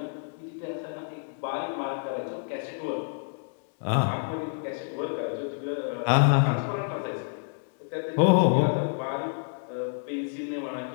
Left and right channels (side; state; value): right; silent; digital silence